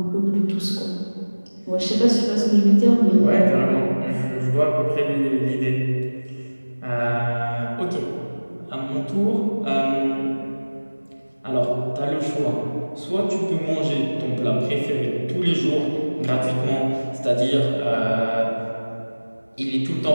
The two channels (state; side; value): inverted; both; correlation -1.00